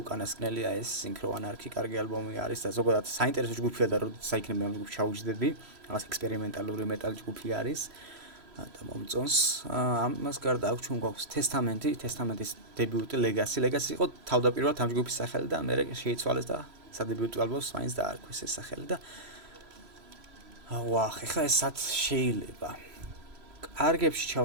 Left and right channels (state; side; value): late; left; 3.0 ms